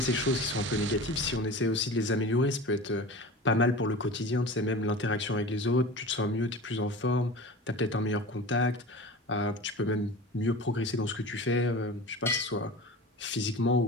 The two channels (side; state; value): both; normal; correlation 0.34